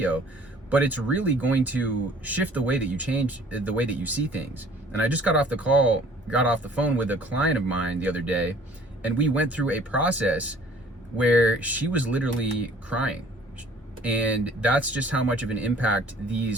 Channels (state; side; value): normal; both; correlation 0.54